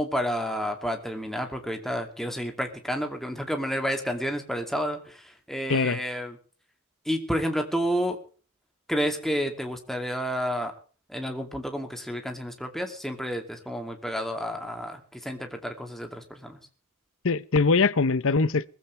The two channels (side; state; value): both; normal; correlation 0.51